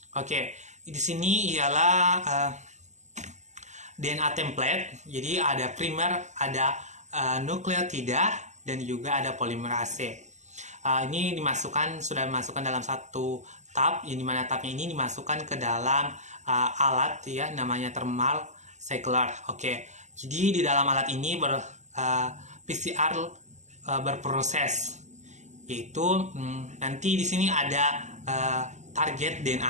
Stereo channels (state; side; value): late; left; 0.34 ms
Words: Oke. Di sini ialah DNA template. Jadi ada primer, ada nukleotida, dan juga ada polimerase. Ini sudah dimasukkan dalam satu tab, yang dimana tabnya ini dimasukkan ke dalam alat ya, namanya thermal cycler. Oke. Jadi di dalam alat ini PCR berproses, yaitu nanti di sini ada target